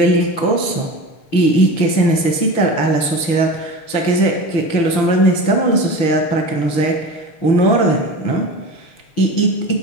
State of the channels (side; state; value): right; late; 6.6 ms